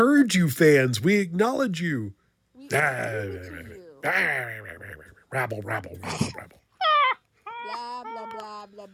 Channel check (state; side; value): identical; both; correlation 1.00